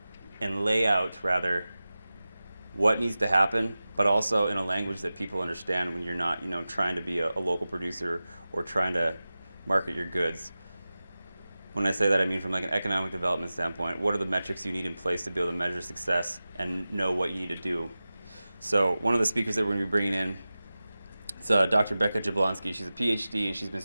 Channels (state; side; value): inverted; both; correlation -0.96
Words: and lay out rather what needs to happen, but also in a language that people understand when you're not, trying to be a local producer or trying to market your goods. When I say that, I mean from like an economic development standpoint, what are the metrics you need in place to be able to measure success and know what you need to do? So one of the speakers that we're going to be bringing in is Dr. Becca Jablonski. She's a PhD, and she's been